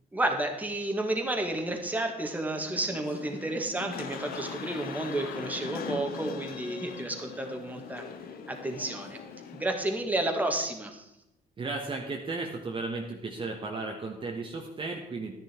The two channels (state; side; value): normal; both; correlation 0.53